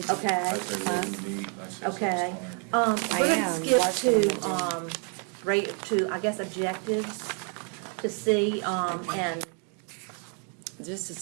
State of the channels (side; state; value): left; quieter; 39.7 dB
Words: Okay. I say what we need. I say Okay. Ms. Klein. We're I gonna am skip watching to, them I guess, objectives to see, and, This is